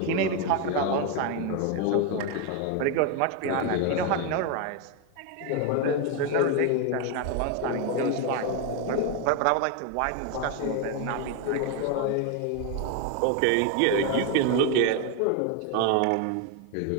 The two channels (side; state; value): both; different; correlation 0.01